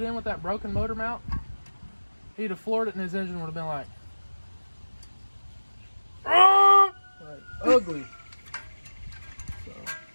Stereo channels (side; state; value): both; inverted; correlation -1.00